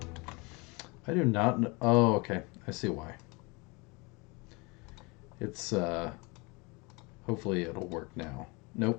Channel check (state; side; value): quieter; right; 27.5 dB